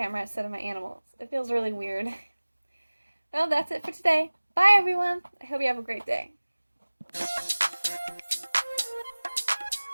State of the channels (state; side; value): inverted; both; correlation -1.00